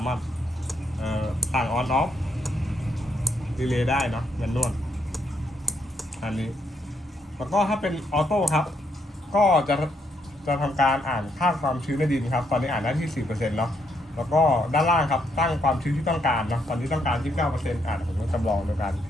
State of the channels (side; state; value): both; normal; correlation 0.74